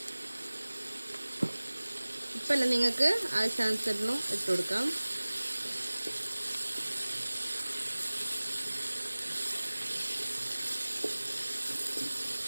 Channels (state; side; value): inverted; both; correlation -1.00